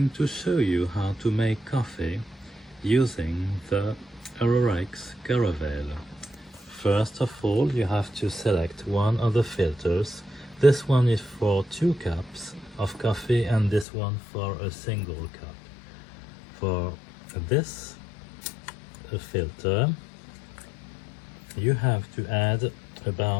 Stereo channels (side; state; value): right; drops out; at 13.9 s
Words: to show you how to make coffee using the Arrarex Caravel. First of all, you have to select one of the filters. This one is for 2 cups of coffee and this one for a single cup. For this filter, you have to add